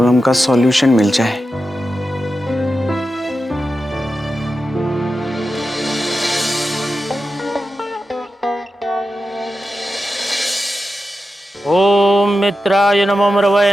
का सॉल्यूशन मिल जाए। ओम मित्राय नमः,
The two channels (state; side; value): normal; both; correlation 0.91